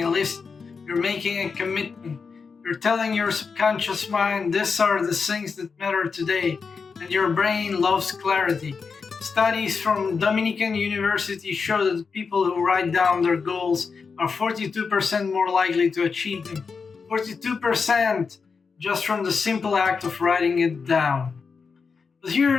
a list, you're making a commitment. You're telling your subconscious mind, these are the things that matter today, and your brain loves clarity. Studies from Dominican University show that people who write down their goals are 42% more likely to achieve them. 42% just from the simple act of writing it down. But here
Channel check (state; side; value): quieter; right; 5.2 dB